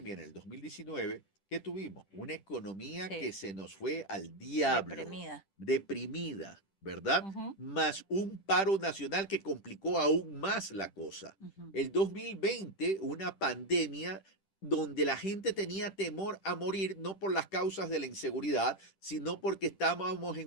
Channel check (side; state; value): right; late; 10 ms